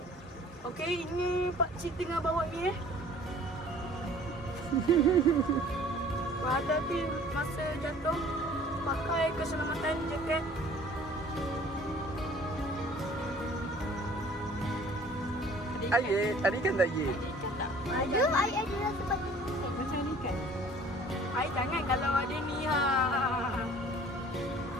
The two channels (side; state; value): both; normal; correlation 0.51